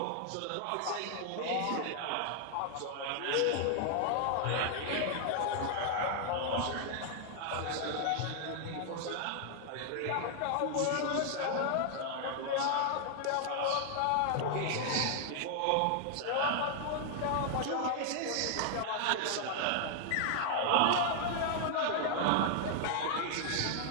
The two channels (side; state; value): both; different; correlation 0.00